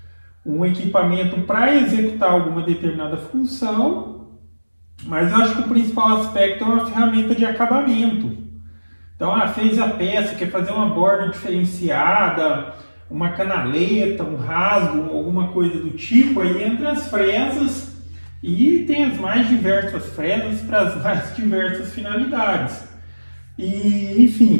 um equipamento para executar alguma determinada função. Mas eu acho que o principal aspecto é uma ferramenta de acabamento. Então, fez a peça, quer fazer uma borda diferenciada, uma canaleta, um rasgo, alguma coisa do tipo, aí entra as fresas e tem as mais diversas fresas para as mais diversas finalidades. E, enfim,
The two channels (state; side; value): inverted; both; correlation -1.00